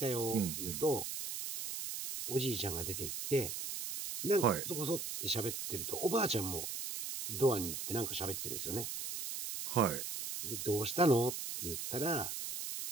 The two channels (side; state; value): right; noise; hiss, 5 dB below the sound